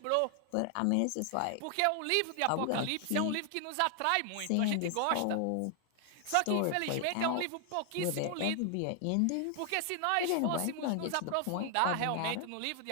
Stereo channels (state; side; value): different; both; correlation 0.00